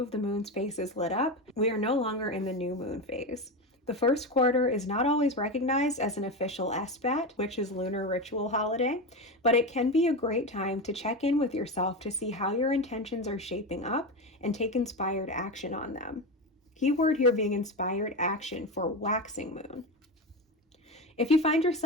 the moon's face is lit up, we are no longer in the new moon phase. The first quarter is not always recognized as an official Esbat, which is lunar ritual holiday, but it can be a great time to check in with yourself to see how your intentions are shaping up and take inspired action on them. Keyword here being inspired action for waxing moon. If you find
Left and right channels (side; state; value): both; normal; correlation 0.19